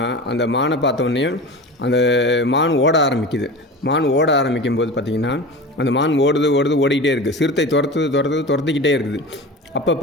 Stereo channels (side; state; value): both; normal; correlation 0.31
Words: அந்த மானை பார்த்தோன்னே அந்த மான் ஓட ஆரம்பிக்குது. மான் ஓட ஆரம்பிக்கும் போது பார்த்திங்கன்னா அந்த மான் ஓடிக்கிட்டே இருக்குது. சிறுத்தை துரத்திக்கிட்டே இருக்குது. அப்போ